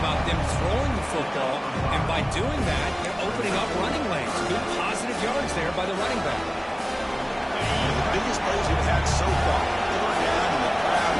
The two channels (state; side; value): identical; both; correlation 1.00